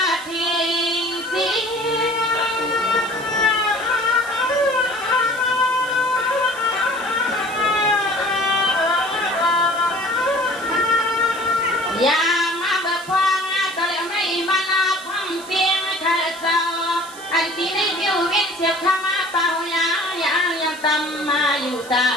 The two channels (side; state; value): right; noise; hiss, 17 dB below the sound